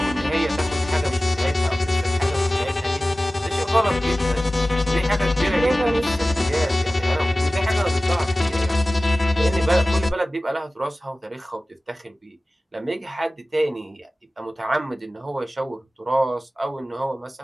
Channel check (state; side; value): normal; both; correlation 0.96